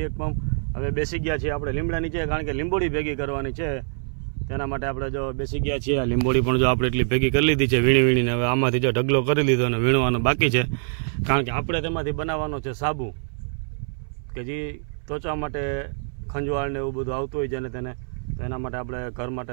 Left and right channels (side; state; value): left; silent; 62 dB below the other